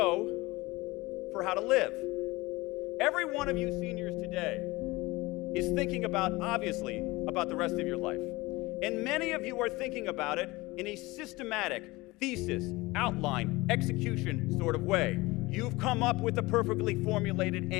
for how to live. Every one of you seniors today is thinking obviously, about the rest of your life. And many of you are thinking about it in a systematic, thesis, outline, execution sort of way. You've come up with a perfectly formulated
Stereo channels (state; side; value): quieter; right; 21.6 dB